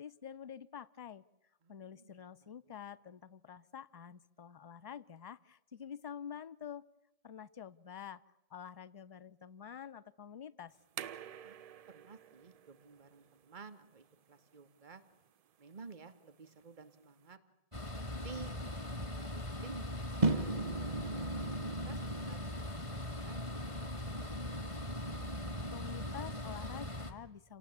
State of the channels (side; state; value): left; late; 1.7 ms